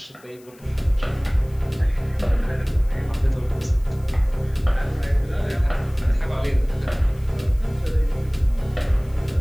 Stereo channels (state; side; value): noise; left; hiss, 28 dB below the sound